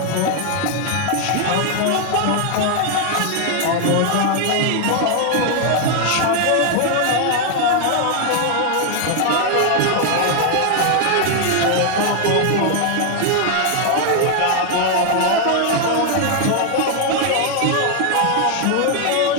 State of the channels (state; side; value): different; both; correlation 0.00